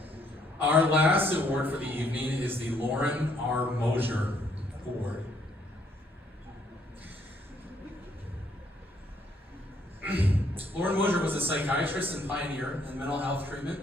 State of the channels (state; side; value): normal; both; correlation 0.68